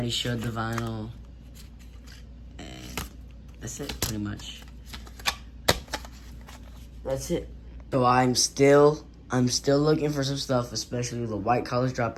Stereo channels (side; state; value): both; identical; correlation 1.00